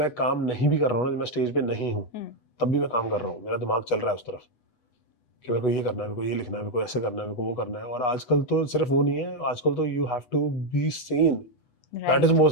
काम नहीं भी कर रहा हूँ ना, जब मैं स्टेज पे नहीं हूँ, तब भी मैं काम कर रहा हूँ. मेरा दिमाग चल रहा है उस तरफ कि मेरे को ये करना है, मेरे को ये लिखना है, मेरे को ऐसे करना है, मेरे को वो करना है. और आजकल तो सिर्फ वो नहीं है, आजकल तो you have to be seen. Right. That is the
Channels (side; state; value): right; late; 8.1 ms